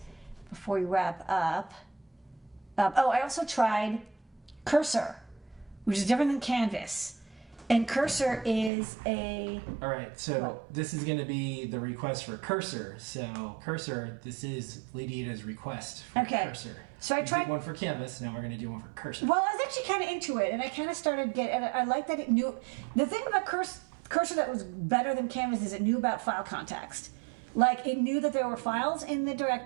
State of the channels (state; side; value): drops out; left; at 8.7 s